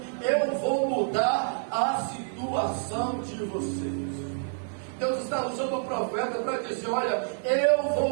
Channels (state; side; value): silent; left; 59 dB below the other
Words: eu vou mudar a situação de vocês. Deus está usando o profeta para dizer: olha, eu